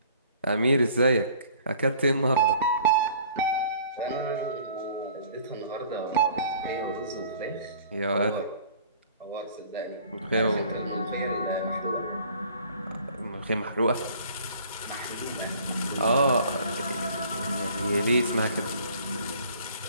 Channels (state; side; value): inverted; both; correlation -0.53